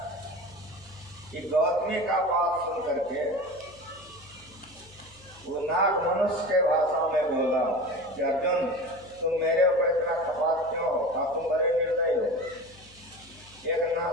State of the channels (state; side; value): noise; left; hum, 25 dB below the sound